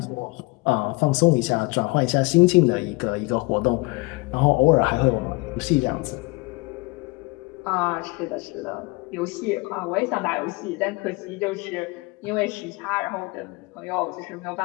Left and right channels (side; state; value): right; quieter; 25.7 dB